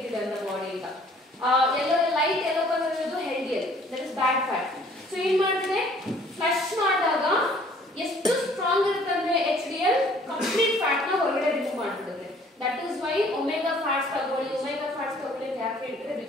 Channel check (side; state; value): both; normal; correlation 0.56